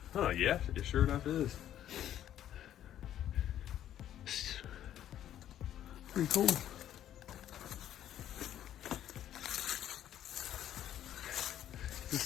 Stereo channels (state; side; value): quieter; right; 11.3 dB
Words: Huh, yeah, it sure enough is. Pretty cool.